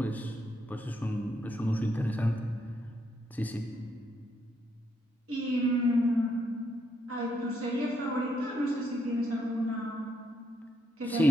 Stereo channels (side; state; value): both; normal; correlation 0.76